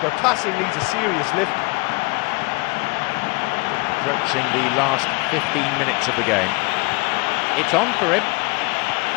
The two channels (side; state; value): right; quieter; 26.5 dB